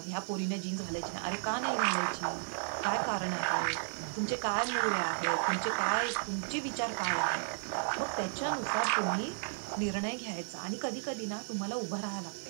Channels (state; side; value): silent; left; digital silence